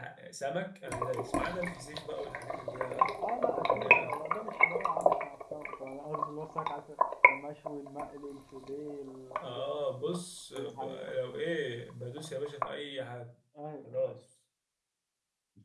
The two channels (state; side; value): identical; both; correlation 1.00